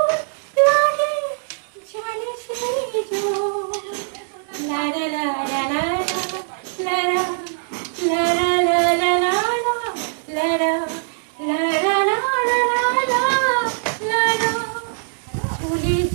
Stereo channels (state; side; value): silent; left; digital silence